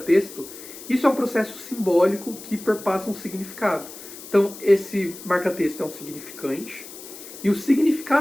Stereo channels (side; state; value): left; noise; hiss, 15 dB below the sound